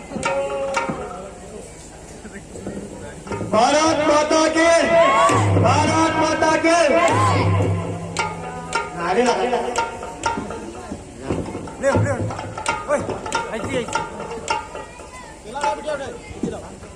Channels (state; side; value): identical; both; correlation 1.00